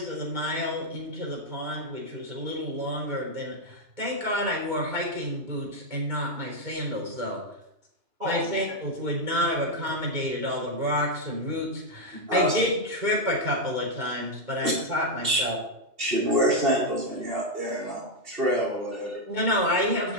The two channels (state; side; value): late; left; 2.7 ms